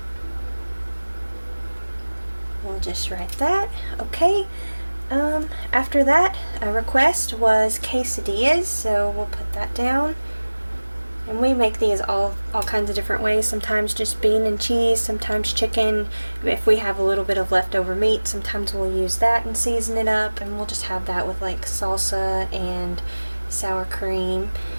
We'll just write that. Okay. After that, a request was quesadillas, so we'll put that down. And we make these all kinds of different ways. Sometimes just bean and cheese, sometimes chicken. If we have a little bit of leftover meat, sometimes we'll use that and season it up, and we'll just have that with like salsa and sour cream.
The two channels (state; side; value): inverted; both; correlation -1.00